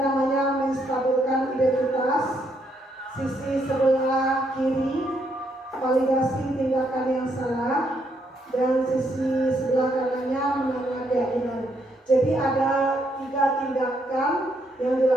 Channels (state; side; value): normal; both; correlation 0.75